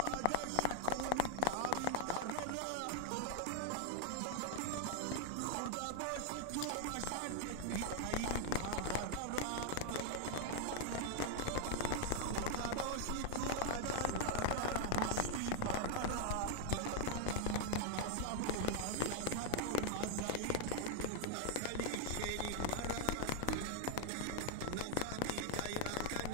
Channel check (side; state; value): both; different; correlation 0.00